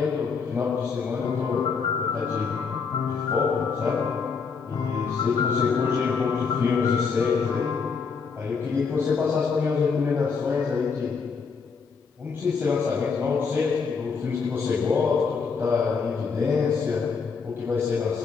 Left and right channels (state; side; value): quieter; right; 5.4 dB